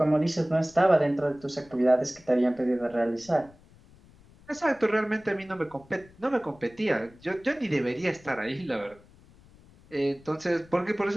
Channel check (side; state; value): left; noise; rumble, 26 dB below the sound